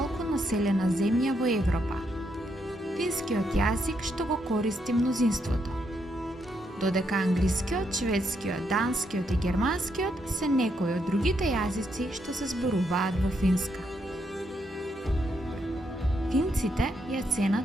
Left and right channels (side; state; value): both; normal; correlation 0.78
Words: населена земја во Европа. Финскиот јазик што го користи мнозинството, додека англискиот, шведскиот, данскиот и германскиот се некои од другите јазици што се зборуваат во Финска. Финците ја ценат